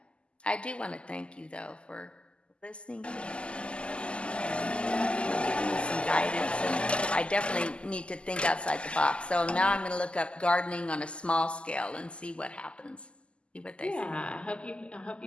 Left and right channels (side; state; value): right; late; 0.052 ms